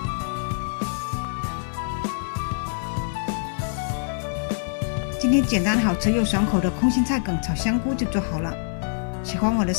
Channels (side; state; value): right; silent; 62 dB below the other